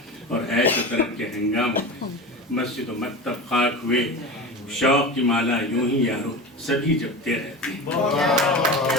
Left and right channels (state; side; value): normal; both; correlation 0.28